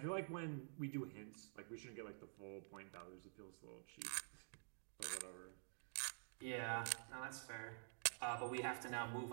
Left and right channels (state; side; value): silent; left; digital silence